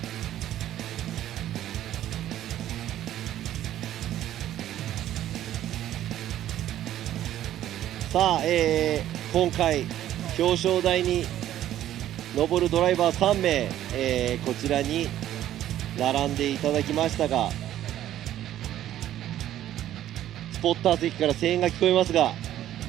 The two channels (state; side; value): quieter; left; 12.4 dB